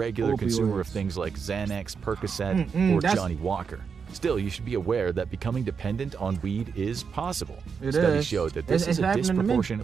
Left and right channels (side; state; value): left; quieter; 6.0 dB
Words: Opioids. consumer of things like Xanax, Percocet, or that's- Johnny Walker. Still, you should be aware that becoming dependent on weed is possible. It Studies is. show that this It's is a happening to me.